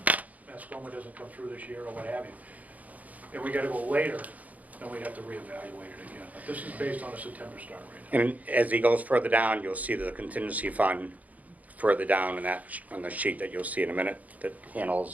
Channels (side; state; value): left; late; 0.075 ms